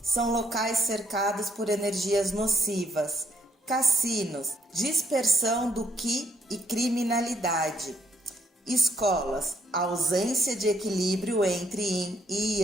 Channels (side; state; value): both; normal; correlation 0.71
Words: são locais cercados por energias nocivas. Cassinos, dispersão do Qi e criminalidade. Escolas, ausência de equilíbrio entre Yin e